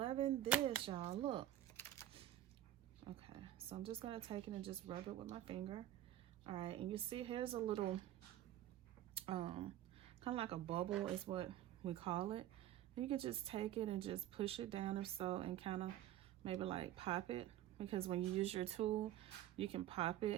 this, y'all. Look. Okay, so I'm just going to take it and just rub it with my finger. All right, and you see here's a little kind of like a bubble is what we call it. And you can just take it and just push it down or so, and kind of maybe like pop it, because when you use your tool you can pop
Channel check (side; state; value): left; quieter; 12.8 dB